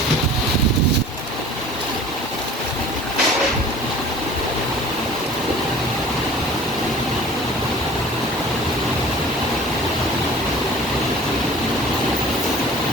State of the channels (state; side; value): normal; both; correlation 0.45